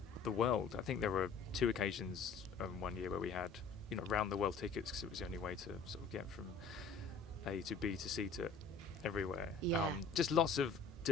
the world. I think there were 2 occasions one year where we had round the world tickets because it was the only way to sort of get from A to B to C to everywhere. Yeah. Just lots of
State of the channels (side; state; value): right; quieter; 4.9 dB